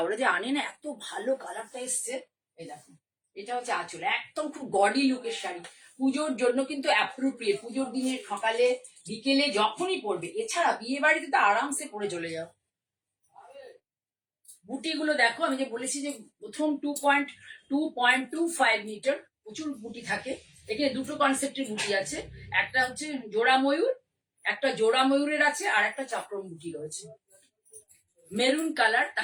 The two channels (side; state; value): both; identical; correlation 1.00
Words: যে আনে না, এত ভালো কালারটা এসছে। এই দেখো, এটা হচ্ছে আঁচল, একদম খুব গডি লুকের শাড়ি, পুজোর জন্য কিন্তু অ্যাপ্রোপ্রিয়েট, পুজোর দিনে সকালে বিকেলে যখনই পরবে। এছাড়া বিয়ে বাড়িতে তো আরামসে পরে চলে যাও। বুটিগুলো দেখো, আমি যে বলেছি যে প্রথম 2.25 মিটার, প্রচুর বুটি থাকে এখানে। দুটো কনসেপ্টের বুটি আছে, একটা হচ্ছে জোড়া ময়ূর, একটা জোড়া ময়ূরের আছে, আর একটা চক্রম বুটি রয়েছে। মেরুন কালার,